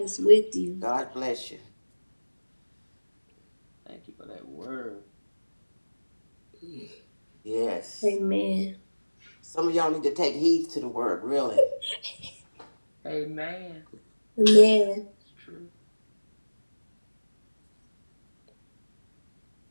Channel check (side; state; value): both; inverted; correlation -1.00